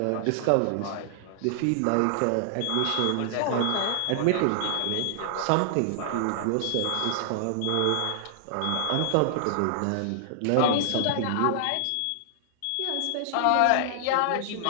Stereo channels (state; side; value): different; both; correlation -0.01